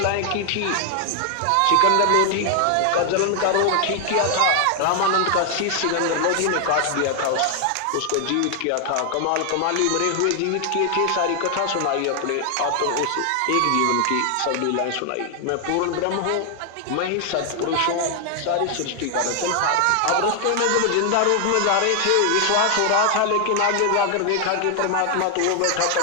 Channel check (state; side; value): different; both; correlation 0.00